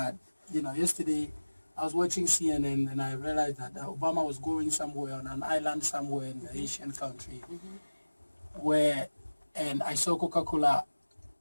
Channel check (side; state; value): both; inverted; correlation -1.00